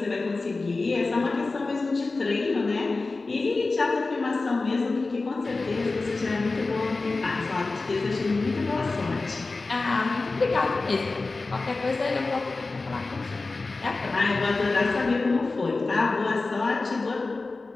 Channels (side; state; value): right; quieter; 3.6 dB